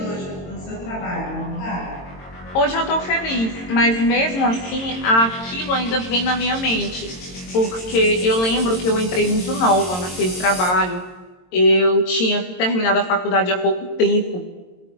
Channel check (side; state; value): right; late; 22 ms